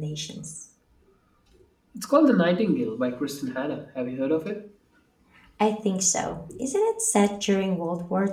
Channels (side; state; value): both; identical; correlation 1.00